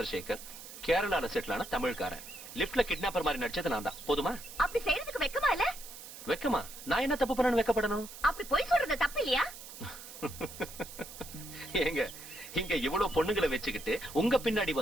கேரளால செட்டில் ஆன தமிழ்காரன். லிப்ட்ல கிட்னாப்பர் மாதிரி நடிச்சது நான் தான். போதுமா? அப்படி செய்யறதுக்கு வெக்கமா இல்ல? வெக்கமா? நான் என்ன தப்பு பண்ணணும் வெக்கப்படணும்? அப்படி போய் சொல்றது தப்பு இல்லையா? ஏங்க, இங்க இவ்வளவு பொண்ணுங்களை வச்சுக்கிட்டு உங்க பின்னாடி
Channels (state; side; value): noise; right; hiss, 14 dB below the sound